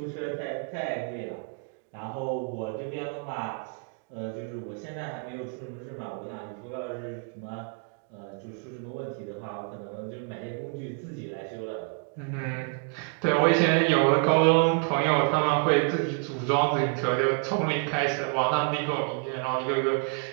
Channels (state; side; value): quieter; left; 38.8 dB